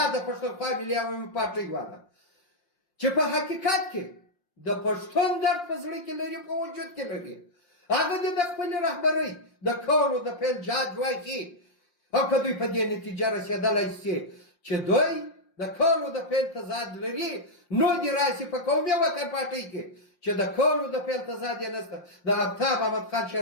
د پښتونخوا ملي عوامي پارټۍ والا چې په حقیقت کې د پښتون درد په زړه کې لري، په وجود کې لري، هغه دې د خپلې رهبرۍ د کولو د پیل جهاد واخلي. او که دوی په دې نتیجه رسېدلی شي چې دوی د کولو د پیل تضاد لري، نو دې راسي په قومي وطن پارټۍ کې چې د کولو د پیل تضاد یې نشته، د آفتاب احمد خان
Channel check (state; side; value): late; right; 5.7 ms